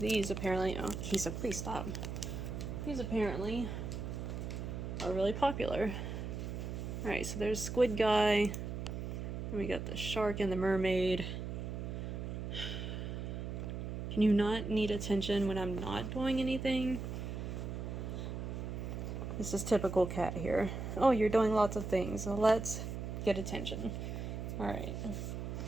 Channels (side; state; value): right; noise; hum, 5 dB below the sound